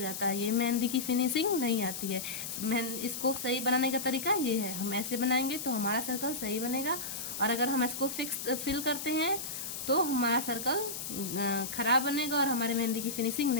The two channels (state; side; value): noise; left; hiss, 6 dB below the sound